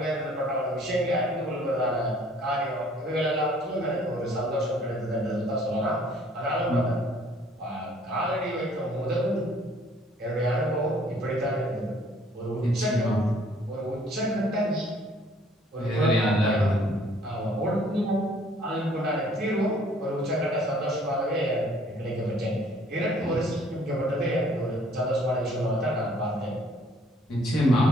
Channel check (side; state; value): both; normal; correlation 0.59